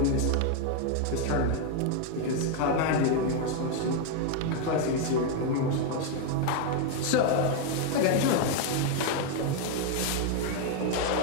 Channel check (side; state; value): both; different; correlation 0.01